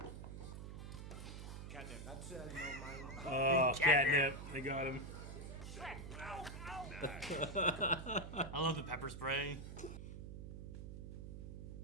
Catnip. That's no mind. Oh, catnip. They got him. I love the pepper spray.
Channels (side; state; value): right; noise; hum, 9 dB below the sound